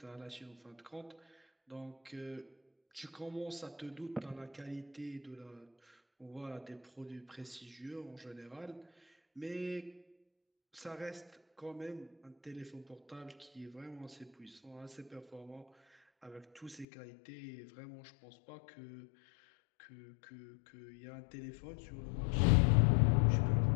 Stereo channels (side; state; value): right; drops out; at 16.9 s